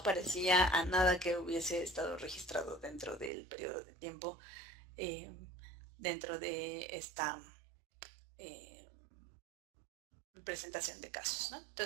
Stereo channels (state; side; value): drops out; left; at 3.3 s